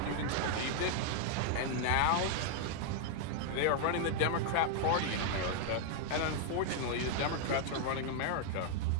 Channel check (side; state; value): both; different; correlation 0.00